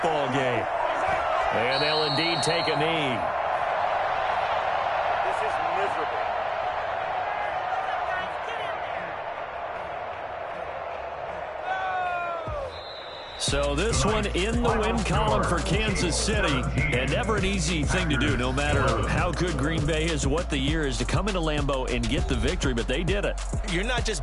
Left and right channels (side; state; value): both; identical; correlation 1.00